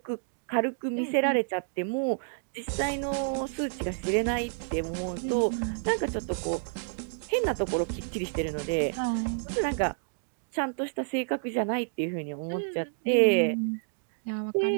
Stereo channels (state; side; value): silent; left; digital silence